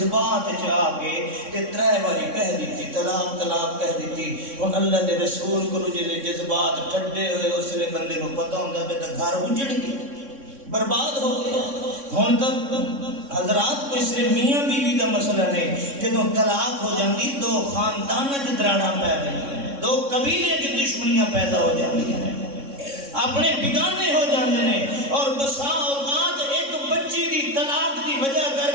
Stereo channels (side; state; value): left; late; 3.6 ms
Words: چ آ گئے تے ترے واری کہہ دیتی طلاق طلاق کہہ دیتی ہن اللہ دے رسول کو جے جذبات ٹھڈے ہوئے اس لے بندے نو پتہ ہوندا ہے تے گھر اجڑ گیا برباد ہو گیا ہن تک حضرات کوئی صرف میاں بیوی دا مسئلہ نہیں جدوں طلاق ہو جاندی دو خاندان وچ دراڑاں پے گئیں دو قبیلے کی دشمنیاں پیدا ہو جاندی ہیں اپنے بگانے ہو جاندے نے اور بسا اوقات ایک بچی دی طلاق دی وجہ